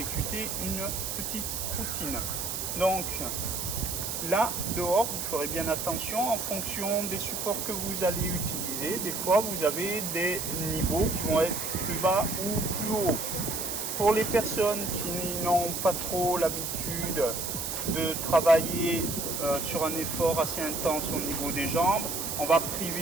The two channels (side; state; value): right; noise; hiss, 3 dB below the sound